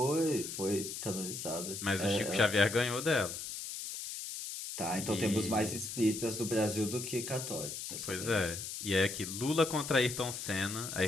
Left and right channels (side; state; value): left; noise; hiss, 7 dB below the sound